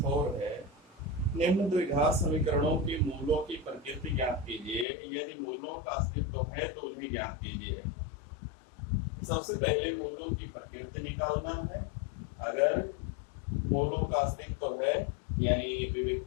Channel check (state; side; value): drops out; right; at 4.9 s